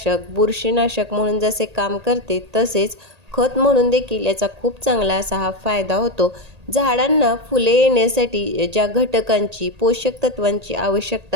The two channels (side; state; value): left; late; 1.8 ms